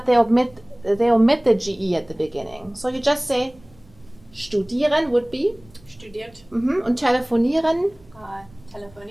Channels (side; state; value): right; noise; rumble, 27 dB below the sound